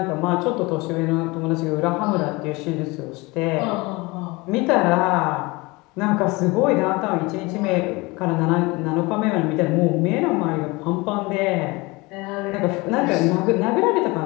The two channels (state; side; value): quieter; right; 24.2 dB